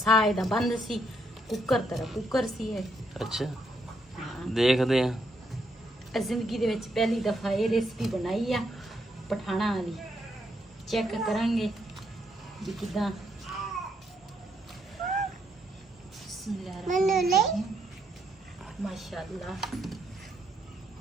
ਇਹਦਾ ਬੰਦ ਸੀ ਕੁੱਕਰ ਤਰ੍ਹਾਂ ਕੁੱਕਰ ਸੀ ਇਹ। अच्छा देखते हैं। ਜ਼ਿੰਦਗੀ ਦੇ ਵਿੱਚ ਪਹਿਲੀ ਦਫਾ ਇਹ ਰੈਸਪੀ ਬਣਾਈ ਆ ਪਠਾਣਾ ਵਾਲੀ। ਚੈੱਕ ਕਰਾਂਗੇ ਵੀ ਕਿਦਾਂ। ਮਾਸ਼ਾਅੱਲਾ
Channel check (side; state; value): both; normal; correlation 0.76